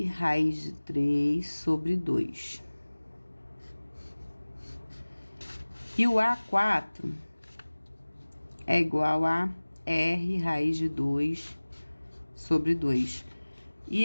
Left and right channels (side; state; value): both; inverted; correlation -1.00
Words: raiz de 3 sobre 2. E o A4 é igual a R raiz de 2 sobre 2. E